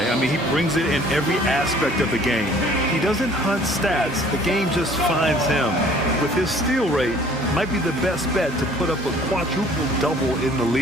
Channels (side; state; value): both; normal; correlation 0.54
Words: I mean, he brings it in every aspect of the game. He doesn't hunt stats. The game just finds him. With his steal rate, might be the best bet to put up a quadruple-double in the